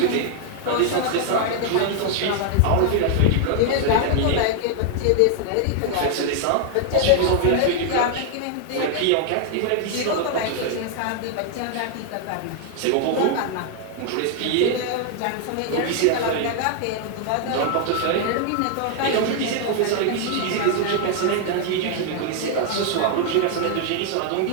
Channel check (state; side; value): different; both; correlation 0.00